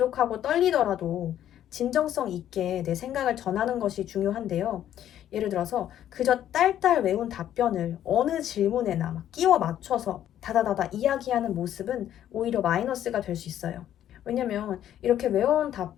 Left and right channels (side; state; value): right; quieter; 11.2 dB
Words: 떨리더라도 진정성 있게 내 생각을 전하는 것이 중요한데요. 예를 들어서 그저 딸딸 외운 답변을 어느 질문에나 막 끼워 맞춰서 다다다다 이야기하는 모습은 오히려 마이너스가 될 수 있어요. 왜냐면 이렇게 외워온